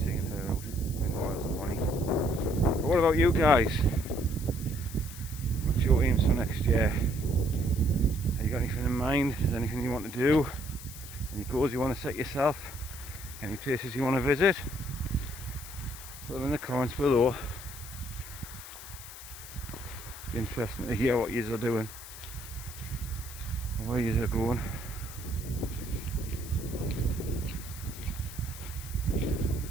seeing her out in Wales and Bonnie. But what about you guys? What's your aims for next year? Have you got anything in mind? Is there anything you want to do? Any goals you want to set yourself? Any places you want to visit? Put them in the comments below. Be interesting to hear what yous are doing and where yous are going.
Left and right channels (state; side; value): noise; left; hiss, 14 dB below the sound